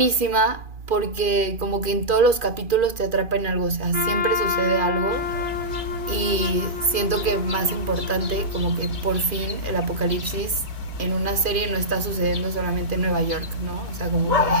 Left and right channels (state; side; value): late; left; 2.4 ms